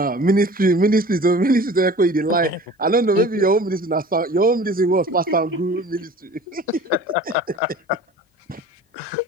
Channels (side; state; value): both; normal; correlation 0.43